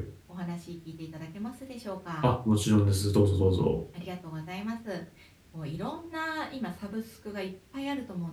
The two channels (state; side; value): identical; both; correlation 1.00